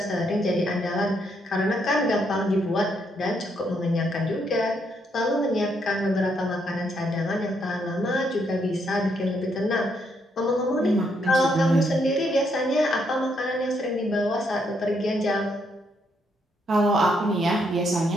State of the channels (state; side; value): normal; both; correlation 0.75